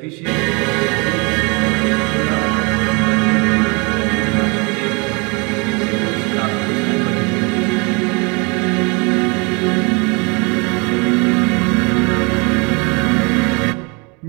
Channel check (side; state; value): left; quieter; 30.4 dB